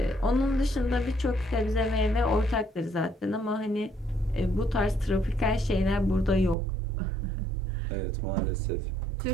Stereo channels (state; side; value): drops out; left; at 6.6 s